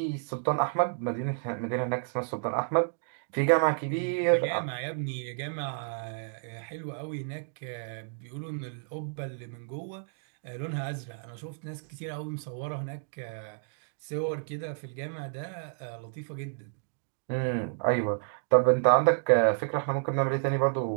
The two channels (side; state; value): left; silent; digital silence